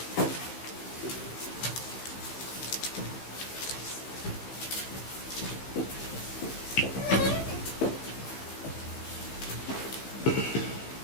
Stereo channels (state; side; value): late; right; 15 ms